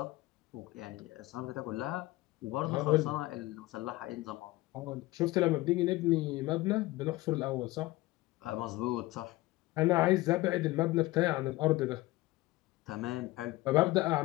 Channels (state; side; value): quieter; right; 19.1 dB